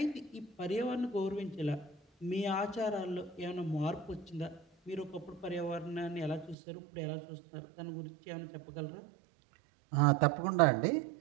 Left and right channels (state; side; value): drops out; left; at 6.6 s